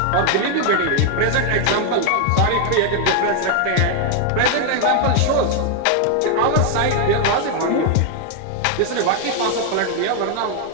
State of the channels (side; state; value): both; different; correlation 0.00